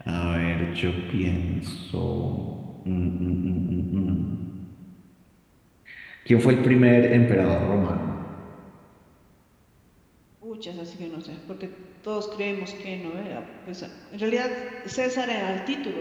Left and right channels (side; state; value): both; identical; correlation 1.00